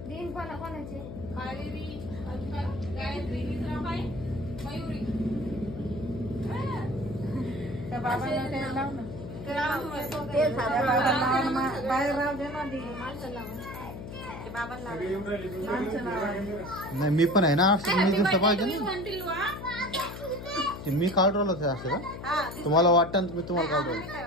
तीन कोणाचे कावेरी गायत्री मित्राबाई मयुरी त्या बाबाला ते लाव ना बाहेर राव दे ना नाही मी पण आहे ना मी काढ राहिलो ते असं का तुम्हाला वाटतं मी तुम्हाला काढ राहिलो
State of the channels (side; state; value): left; noise; hum, 10 dB below the sound